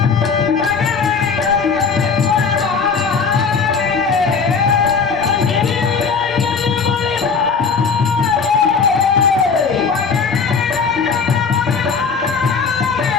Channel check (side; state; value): right; quieter; 5.4 dB